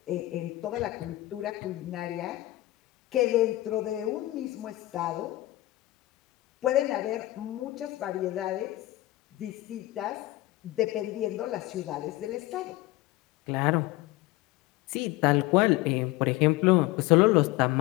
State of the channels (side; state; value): right; quieter; 17.8 dB